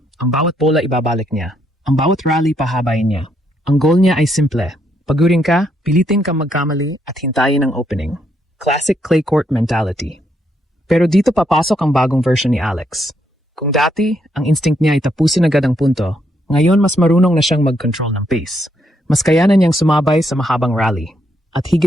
Ang bawat bola ibabalik niya. Ang bawat rally pahabain niya. Ang goal niya ay simple. Pagurin ka, pilitin kang magkamali at hintayin ang opening. Classic clay court mentality. Pero dito papasok ang bagong version ni Alex. Kung dati, ang instinct niya ay tapusin agad ang punto, ngayon mas marunong na siyang mag-control ng pace. Mas kayanan niyang sumabay sa mahabang rally. At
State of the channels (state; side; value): normal; both; correlation 0.76